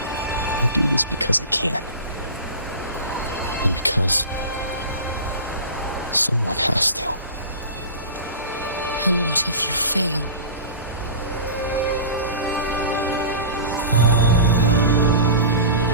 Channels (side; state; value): both; inverted; correlation -0.33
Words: I do this because I can. And because someone has to. And what if you fail?